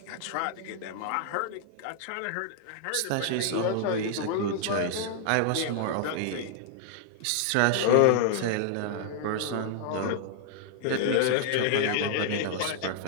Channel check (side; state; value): both; different; correlation -0.01